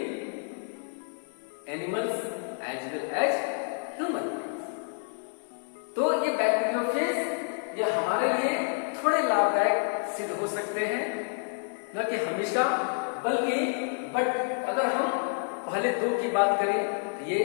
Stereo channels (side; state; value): right; silent; 59 dB below the other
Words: animals as well as human beings। तो ये bacteriophage ये हमारे लिए थोड़े लाभदायक सिद्ध हो सकते हैं, न कि हमेशा, बल्कि बट अगर हम पहले दो की बात करें तो ये